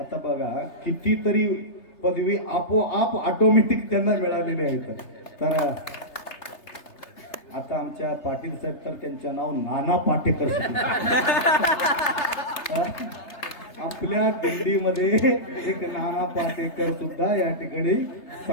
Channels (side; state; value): right; late; 3.3 ms